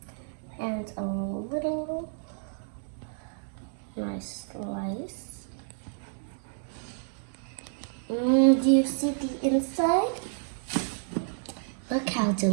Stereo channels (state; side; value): silent; left; digital silence